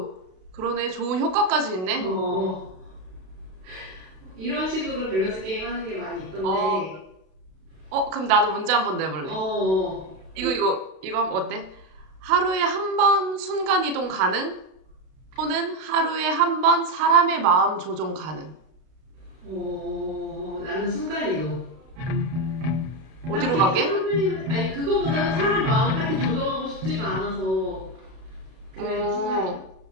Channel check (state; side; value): late; left; 32 ms